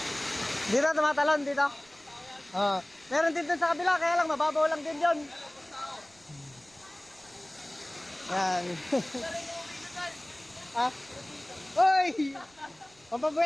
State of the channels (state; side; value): noise; right; rumble, 29 dB below the sound